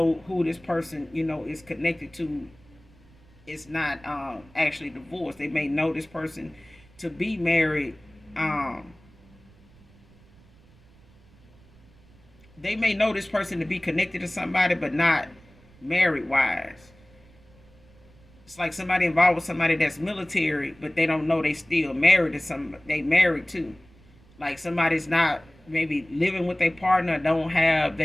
who this person, is connected to. It's not actually divorced. They may know this person to be married. Um, they may know this person to be connected to somebody, but not married wise. It's like somebody involved with somebody that's military, but they don't know they still married to some. They married too. Like, somebody's not maybe living with their partner, don't have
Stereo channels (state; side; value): noise; right; rumble, 27 dB below the sound